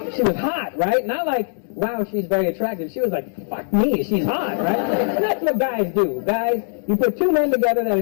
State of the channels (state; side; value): silent; right; digital silence